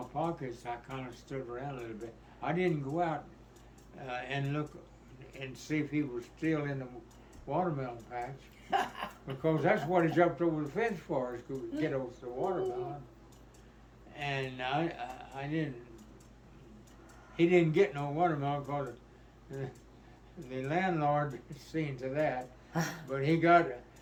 pockets, I kind of stood around a little bit. I didn't go out and look and see if he was still in the watermelon patch, because that's what he jumped over the fence for, is to get over the watermelon. And I didn't. He didn't get no watermelon because the landlord seen to that. But he got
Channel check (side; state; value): both; identical; correlation 1.00